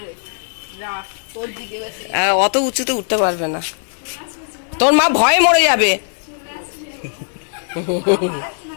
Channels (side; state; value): right; silent; digital silence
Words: অত উঁচুতে উঠতে পারবে না, তোর মা ভয়ে মরে যাবে।